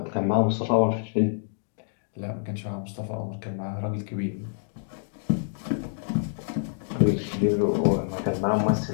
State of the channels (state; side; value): silent; right; digital silence